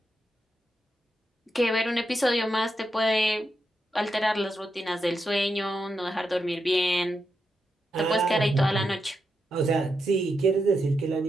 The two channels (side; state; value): both; normal; correlation 0.85